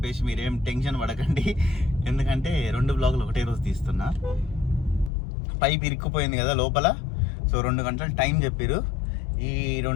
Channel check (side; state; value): right; drops out; at 5.1 s